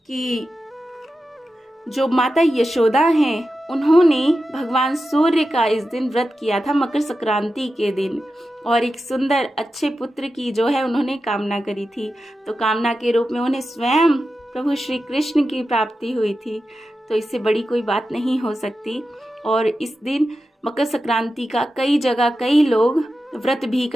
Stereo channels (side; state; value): both; normal; correlation 0.91